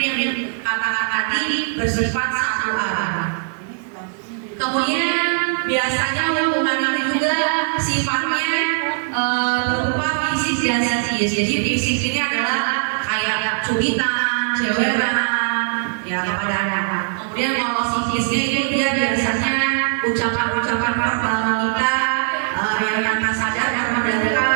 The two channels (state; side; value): silent; left; 65 dB below the other